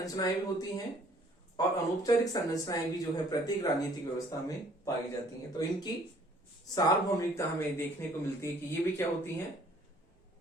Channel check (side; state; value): both; normal; correlation 0.58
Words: भी होती हैं और अनौपचारिक संरचनाएं भी जो है प्रत्येक राजनीतिक व्यवस्था में पाई जाती हैं। तो इनकी सार्वभौमिकता हमें देखने को मिलती है कि ये भी क्या होती है,